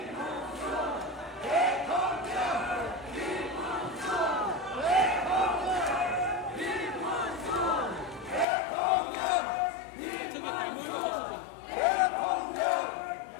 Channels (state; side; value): drops out; right; at 8.5 s